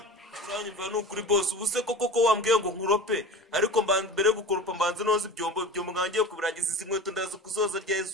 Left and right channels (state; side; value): normal; both; correlation 0.35